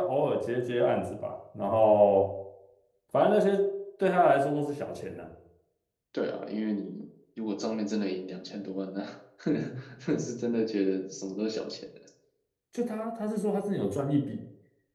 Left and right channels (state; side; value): identical; both; correlation 1.00